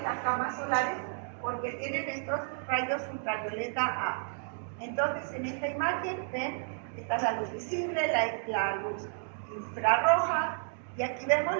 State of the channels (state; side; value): silent; left; 57 dB below the other